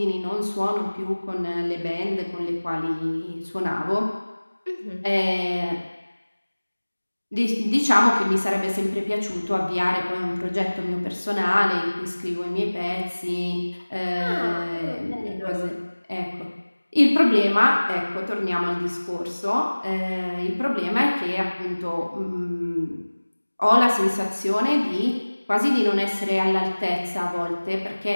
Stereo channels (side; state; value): both; inverted; correlation -1.00